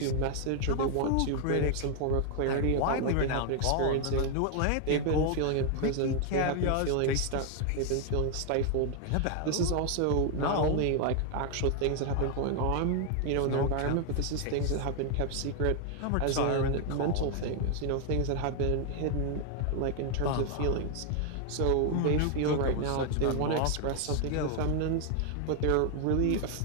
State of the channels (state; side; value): different; both; correlation 0.00